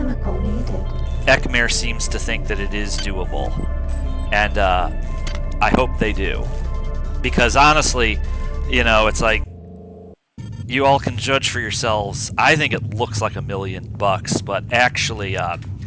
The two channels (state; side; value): identical; both; correlation 1.00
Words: needed. Ekmer seems to think that it is doable. And, I hope they do. Because honestly, you know, it's like, you all can judge for yourselves. I think it looks like $1 million, but actually,